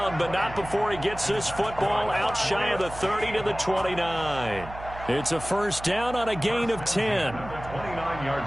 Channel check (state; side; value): noise; right; hum, 13 dB below the sound